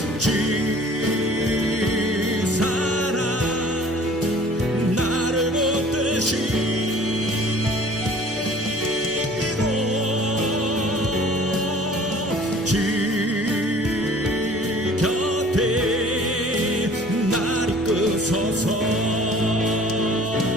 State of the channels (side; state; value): both; normal; correlation 0.50